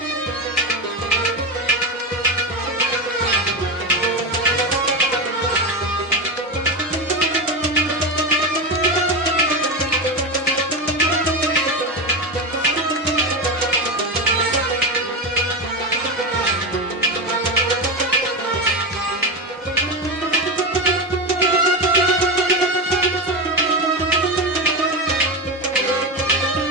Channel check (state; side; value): normal; both; correlation 0.16